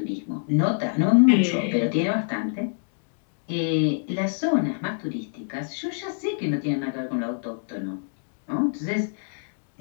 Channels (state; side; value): silent; right; digital silence